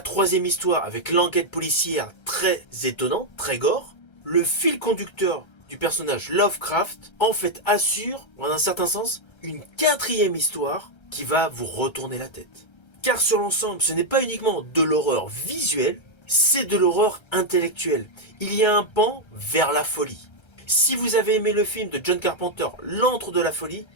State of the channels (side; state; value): right; late; 1.3 ms